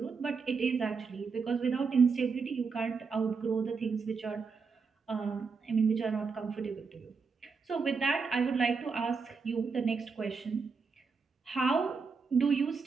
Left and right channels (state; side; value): quieter; left; 5.0 dB